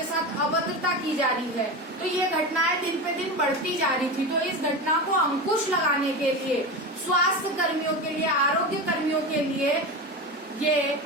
साथ अभद्रता की जा रही है। तो ये घटनाएं दिन पे दिन बढ़ती जा रही थी। तो इस घटना को अंकुश लगाने के लिए स्वास्थ्य कर्मियों के लिए, आरोग्य कर्मियों के लिए ये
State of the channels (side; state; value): both; normal; correlation 0.23